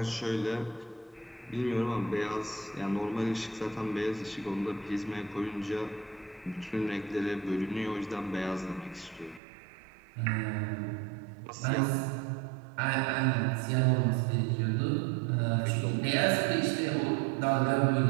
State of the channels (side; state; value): left; drops out; at 9.4 s